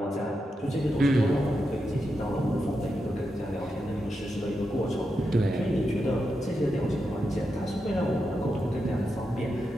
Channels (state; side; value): normal; both; correlation 0.87